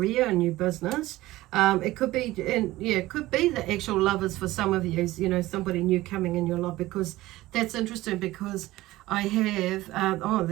a new business. It could be, and yeah, it could be the actual lovers for some of you. You know, somebody new coming in your life, because that's interesting. Because I have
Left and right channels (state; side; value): quieter; left; 17.5 dB